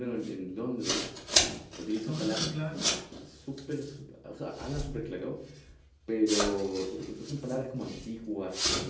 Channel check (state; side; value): identical; both; correlation 1.00